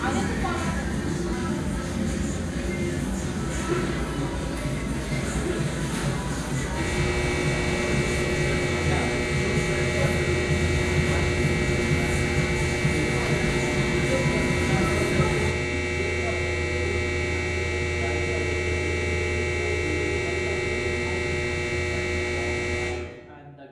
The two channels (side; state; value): both; identical; correlation 1.00